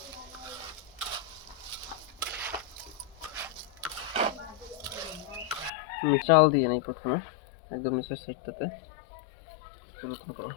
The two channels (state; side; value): drops out; right; at 5.7 s